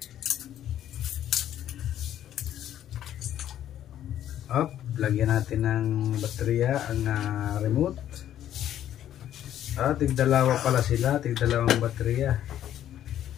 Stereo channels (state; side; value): quieter; right; 11.3 dB